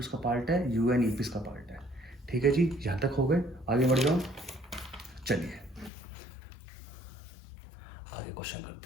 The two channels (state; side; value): drops out; right; at 5.9 s